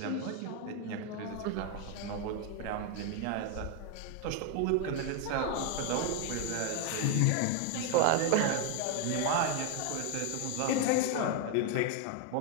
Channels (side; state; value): both; different; correlation 0.01